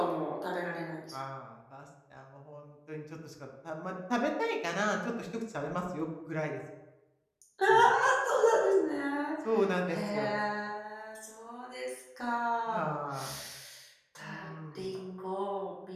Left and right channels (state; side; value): identical; both; correlation 1.00